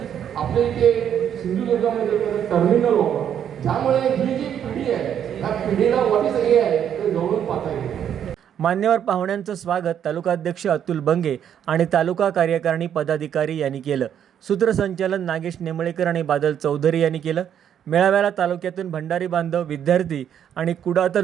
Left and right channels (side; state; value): left; quieter; 9.3 dB